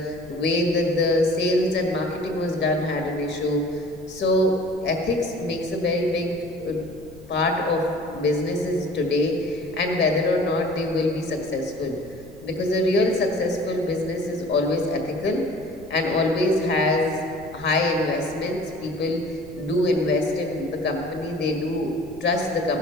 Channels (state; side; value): noise; left; rumble, 21 dB below the sound